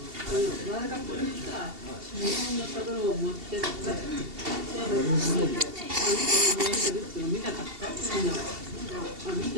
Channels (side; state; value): left; late; 2.7 ms